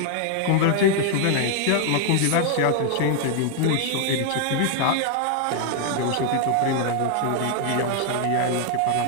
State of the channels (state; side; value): different; both; correlation 0.00